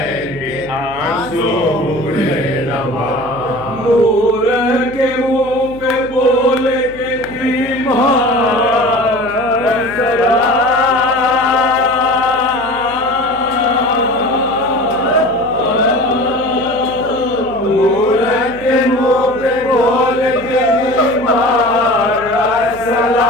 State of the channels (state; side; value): noise; right; hum, 18 dB below the sound